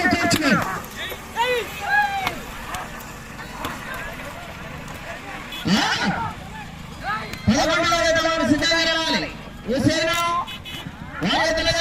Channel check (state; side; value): identical; both; correlation 1.00